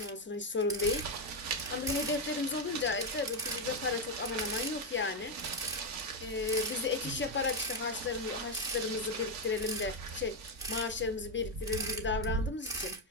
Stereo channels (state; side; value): normal; both; correlation 0.05